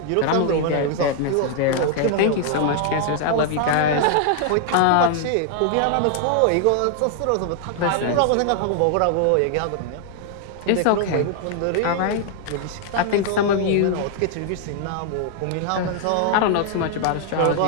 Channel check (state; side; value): different; both; correlation 0.00